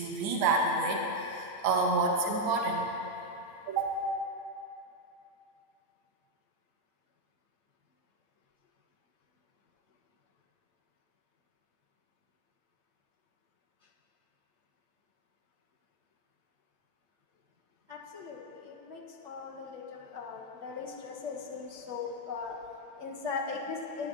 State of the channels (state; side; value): late; left; 8.9 ms